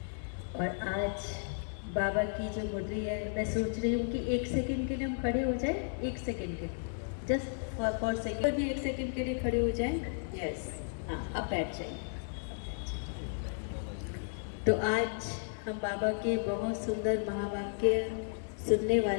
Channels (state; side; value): silent; right; 55 dB below the other